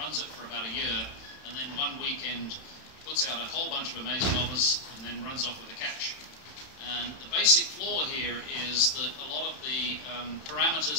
it for about a year, and then one weekend puts out a whole bunch of amazing offers and then runs off with the cash. And the basic flaw here is that a lot of the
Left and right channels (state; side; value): late; right; 31 ms